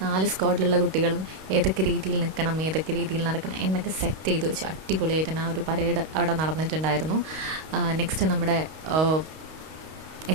സ്ക്വാഡിലുള്ള കുട്ടികളും ഏതൊക്കെ രീതിയിൽ നിൽക്കണം, ഏതൊക്കെ രീതിയിൽ നടക്കണം എന്നൊക്കെ സെറ്റ് ചെയ്ത് വെച്ചു. അടിപൊളിയായിട്ട് തന്നെ ആ ഒരു പരേഡ് അവിടെ നടന്നിട്ടുണ്ടായിരുന്നു. നെക്സ്റ്റ് നമ്മുടെ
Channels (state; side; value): late; left; 32 ms